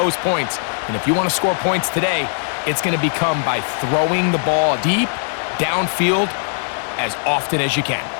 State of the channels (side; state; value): right; silent; digital silence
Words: points. And if you want to score points today, it's going to become by throwing the ball deep, downfield, as often as you can.